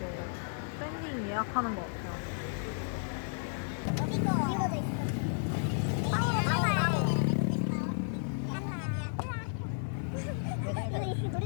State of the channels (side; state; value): right; silent; digital silence